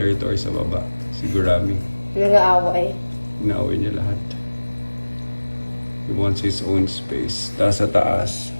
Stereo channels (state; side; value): inverted; both; correlation -1.00